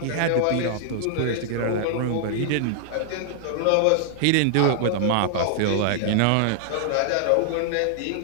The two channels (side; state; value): both; different; correlation -0.01